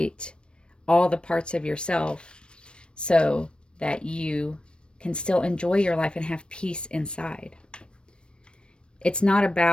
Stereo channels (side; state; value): right; late; 0.056 ms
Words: all the parts of yourself so that you can still enjoy your life and have peace inside. It's not